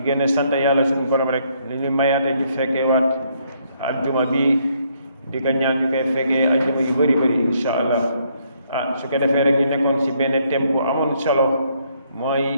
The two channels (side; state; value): both; inverted; correlation -0.70